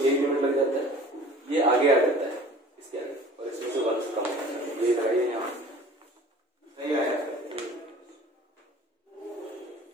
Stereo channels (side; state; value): both; normal; correlation 0.46